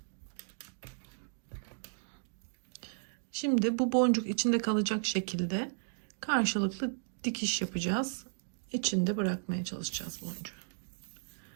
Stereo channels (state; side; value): silent; left; digital silence